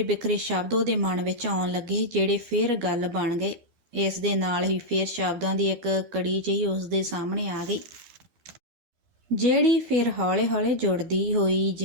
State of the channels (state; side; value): late; left; 12 ms